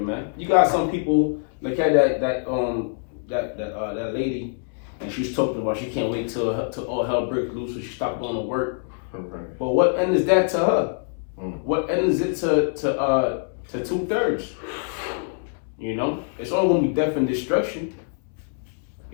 man. You got some people like that lady, and she was talking about she can't wait till all hell breaks loose, so she stopped going to work. Okay. But what end is that to her? Mm. What end is it to 2/3? You know, it's only gonna be death and destruction.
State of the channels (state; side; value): silent; right; 62 dB below the other